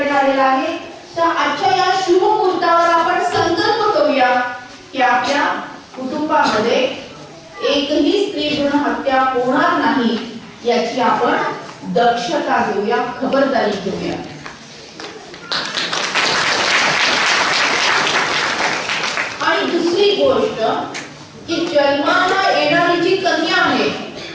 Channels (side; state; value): both; identical; correlation 1.00